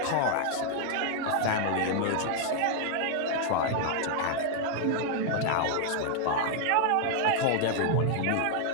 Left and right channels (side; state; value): both; different; correlation 0.00